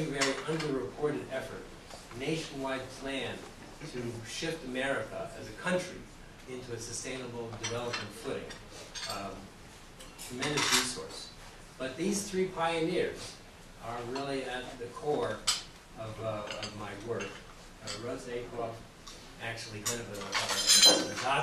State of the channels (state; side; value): identical; both; correlation 1.00